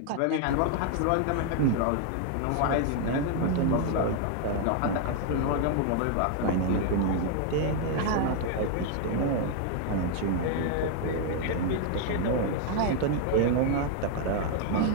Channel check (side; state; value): both; different; correlation 0.00